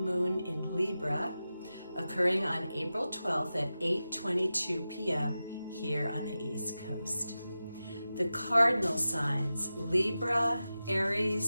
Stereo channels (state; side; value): inverted; both; correlation -0.93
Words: in Libra occurring on April 12th at 8:22 p.m. here on the East Coast. The cardinal signs, Libra,